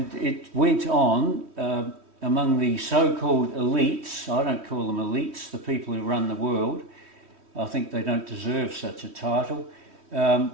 it went on among the so-called elites. I don't call them elites, the people who run the world. I think they don't deserve such a title.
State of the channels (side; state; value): left; late; 3.1 ms